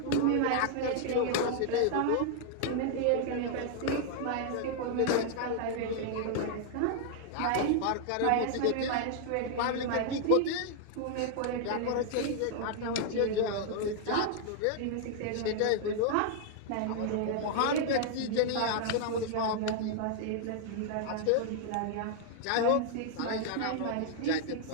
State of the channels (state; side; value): different; both; correlation 0.00